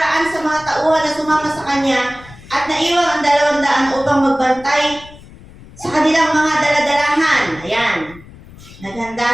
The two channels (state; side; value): noise; left; rumble, 20 dB below the sound